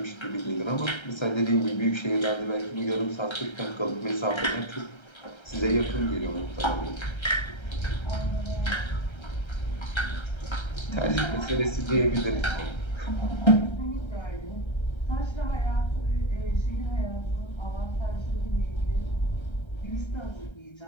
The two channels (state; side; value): late; right; 1.3 ms